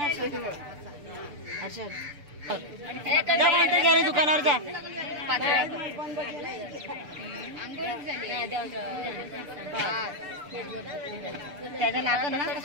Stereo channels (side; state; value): left; late; 6.8 ms